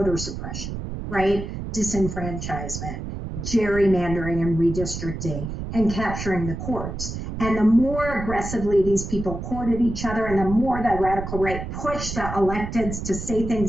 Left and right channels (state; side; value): noise; right; rumble, 7 dB below the sound